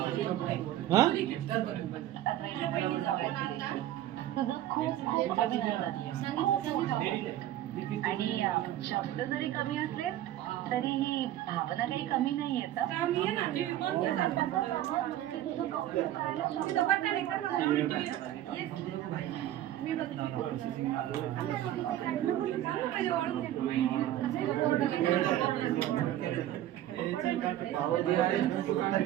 आणि शब्द जरी कमी असले तरी ही भावना काही कमी नाही येत.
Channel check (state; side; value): quieter; left; 13.0 dB